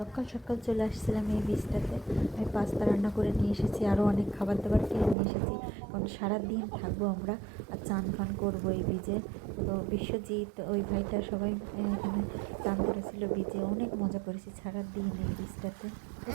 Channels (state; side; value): drops out; left; at 5.2 s